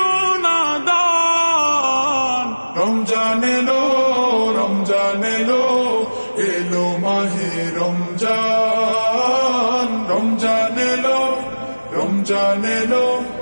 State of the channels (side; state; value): both; inverted; correlation -1.00